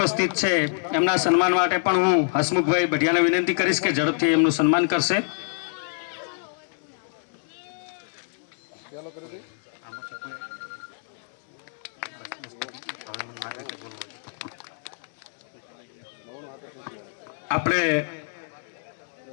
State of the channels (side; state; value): right; silent; 61 dB below the other